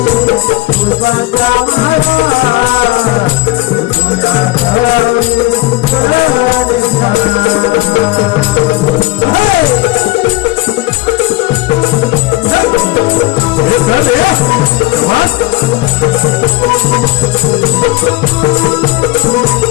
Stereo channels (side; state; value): right; quieter; 19.0 dB